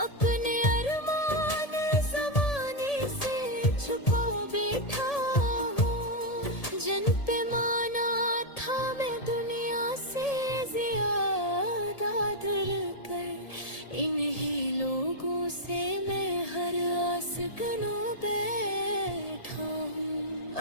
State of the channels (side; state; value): right; late; 1.8 ms